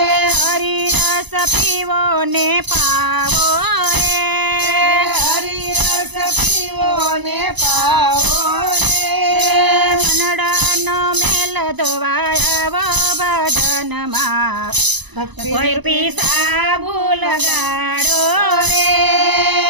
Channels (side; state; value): left; late; 1.0 ms